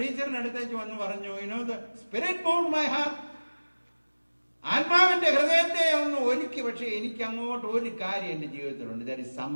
അടുത്തേക്ക് വന്ന് പറഞ്ഞു, the spirit moved my heart. ആത്മാവിന്റെ ഹൃദയത്തെ ഒന്ന് ഒരുക്കി. പക്ഷെ എനിക്ക് അങ്ങോട്ട് ഒരു കാര്യം എൻ്റെ ജീവിതത്തിലുണ്ട്. ദർ ഇസ്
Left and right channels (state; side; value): inverted; both; correlation -1.00